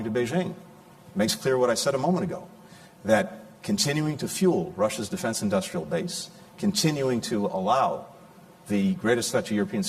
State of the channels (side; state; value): both; identical; correlation 1.00